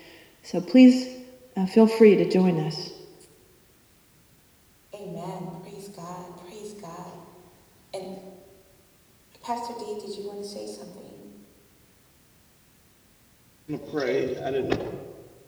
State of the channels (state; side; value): identical; both; correlation 1.00